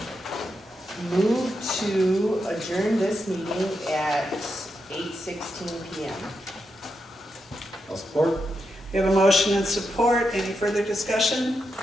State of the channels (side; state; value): both; normal; correlation 0.85